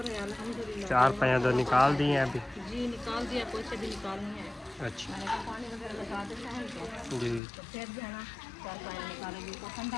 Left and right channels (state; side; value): drops out; right; at 7.4 s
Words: है, अल्हम्दुलिल्लाह। 4 पैया तो निकाल दिए हैं अभी? जी निकाल दिया, पोछे भी निकालनी है। अच्छा मैंने कहा पानी वगैरह लगा देते हैं इनको, जी तो फिर जो है ना 4 पानी निकालेंगे तो